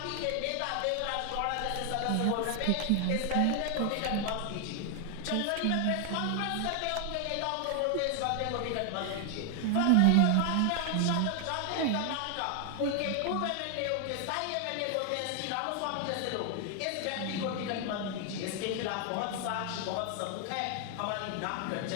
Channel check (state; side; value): different; both; correlation 0.00